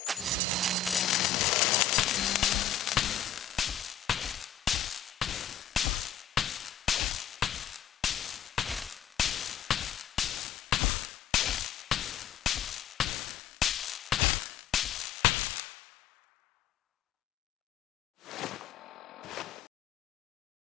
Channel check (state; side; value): quieter; right; 8.6 dB